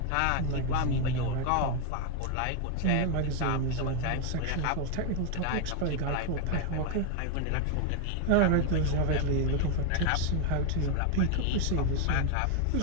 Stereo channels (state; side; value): different; both; correlation 0.01